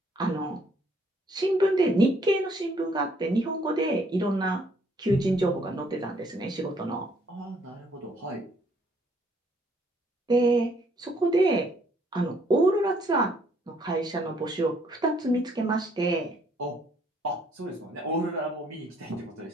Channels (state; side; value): normal; both; correlation 0.66